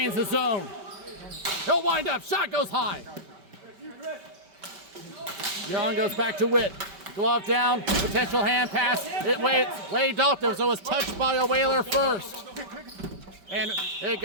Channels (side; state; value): left; late; 5.2 ms